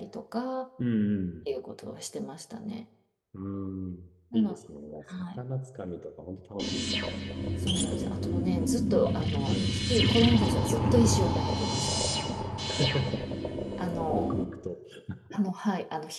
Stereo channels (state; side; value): identical; both; correlation 1.00